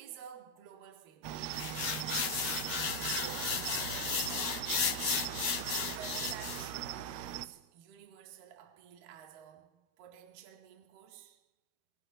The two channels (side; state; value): left; late; 13 ms